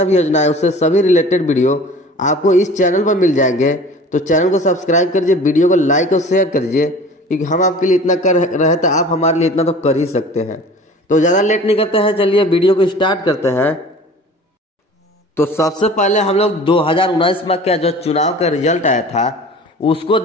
भी योजनाएं उससे सभी रिलेटेड वीडियो आपको इस चैनल पर मिल जाएंगे। तो चैनल को सब्सक्राइब करिए, वीडियो को लाइक और शेयर करिए, क्योंकि हम आपके लिए इतना कर रहे तो आप हमारे लिए इतना तो कर ही सकते हैं। तो ज़्यादा लेट नहीं करते हैं, चलिए वीडियो को स्टार्ट करते हैं। तो सबसे पहले हम लोग 2019 में क्या जो चुनाव का रिजल्ट आया था उसको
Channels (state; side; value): normal; both; correlation 0.43